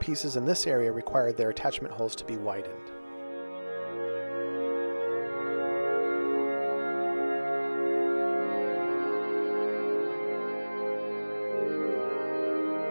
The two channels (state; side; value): inverted; both; correlation -1.00